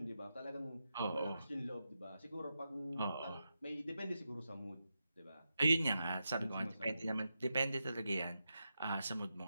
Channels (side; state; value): both; inverted; correlation -0.88